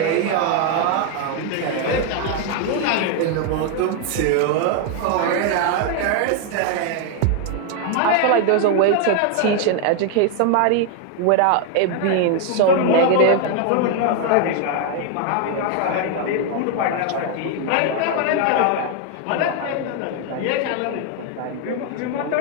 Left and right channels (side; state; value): both; different; correlation 0.00